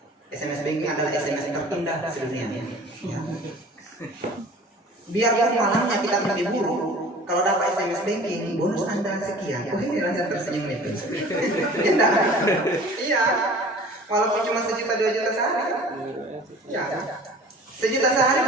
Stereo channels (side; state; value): both; normal; correlation 0.44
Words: SMS banking adalah SMS terindah sedunia ya. Biarpun malamnya kita mimpi buruk, kalau dapat SMS banking bonus Anda sekian, ini rasanya tersenyum itu. Iya, walaupun cuma 1 juta 2 juta sehari ya, 1 juta sehari